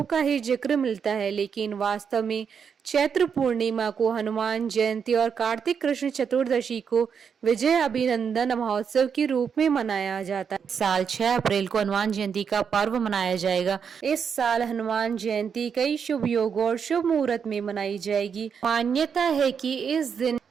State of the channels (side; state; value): left; quieter; 6.8 dB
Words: का ही जिक्र मिलता है, लेकिन वास्तव में चैत्र पूर्णिमा को हनुमान जयंती और कार्तिक कृष्ण चतुर्दशी को विजय अभिनंदन महोत्सव के रूप में मनाया जाता है। साल 6 अप्रैल को हनुमान जयंती का पर्व मनाया जाएगा। इस साल हनुमान जयंती कई शुभ योग और शुभ मुहूर्त में मनाई जाएगी। मान्यता है कि इस दिन